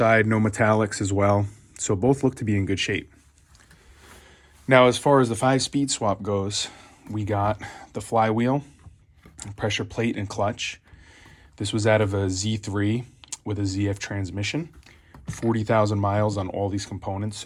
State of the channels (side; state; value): both; identical; correlation 1.00